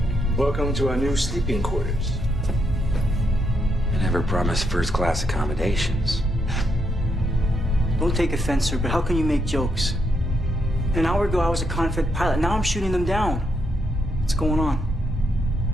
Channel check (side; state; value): both; normal; correlation 0.78